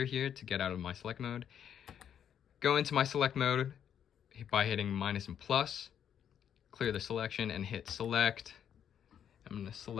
here to get out of my select mode. Go into my select mode by hitting minus and plus. Clear the selection and hit select. I'm going to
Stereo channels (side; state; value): right; quieter; 9.0 dB